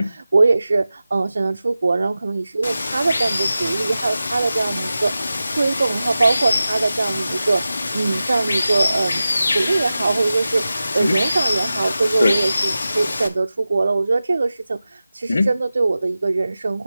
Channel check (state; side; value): inverted; both; correlation -0.94